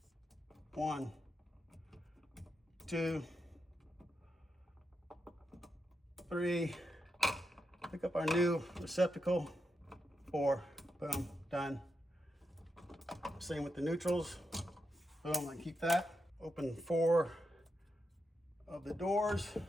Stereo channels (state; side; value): normal; both; correlation 0.84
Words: 1, 2, 3, pick up our new receptacle, 4, boom, done. Same with the neutrals. Boom, I keep that. Open 4 of the doors